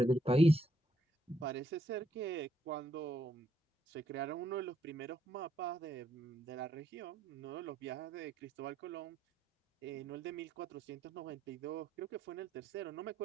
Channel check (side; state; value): both; normal; correlation 0.74